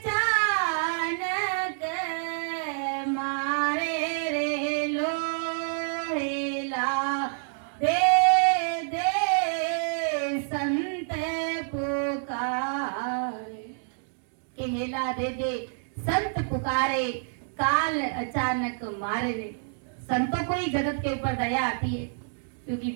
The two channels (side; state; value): left; silent; digital silence